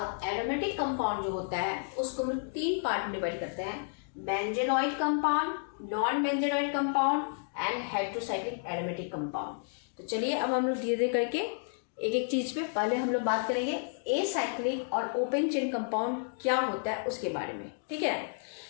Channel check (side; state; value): right; silent; digital silence